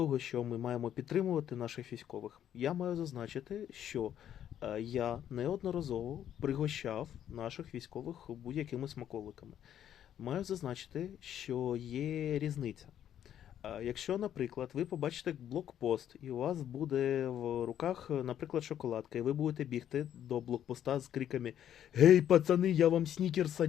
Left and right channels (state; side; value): quieter; right; 10.4 dB